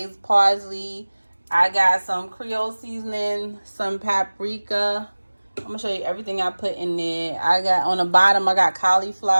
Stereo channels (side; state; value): both; inverted; correlation -1.00